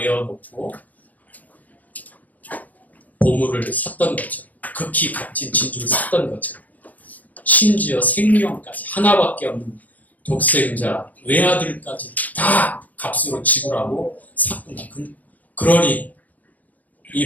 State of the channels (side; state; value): right; late; 0.079 ms